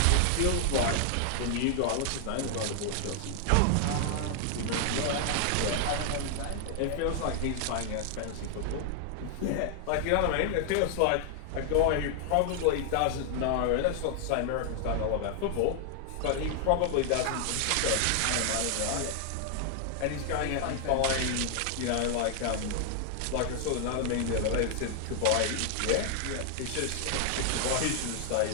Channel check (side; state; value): both; different; correlation 0.00